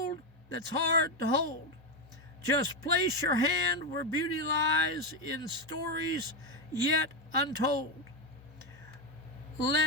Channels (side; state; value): both; normal; correlation 0.09